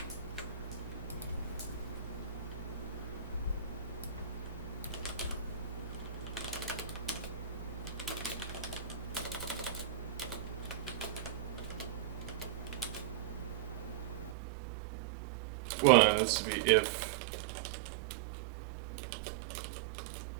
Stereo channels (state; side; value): drops out; left; at 14.4 s